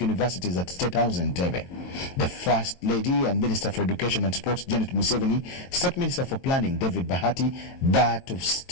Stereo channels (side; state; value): right; late; 22 ms